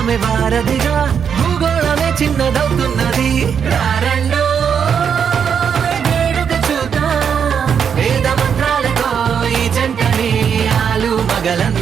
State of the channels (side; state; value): left; quieter; 7.4 dB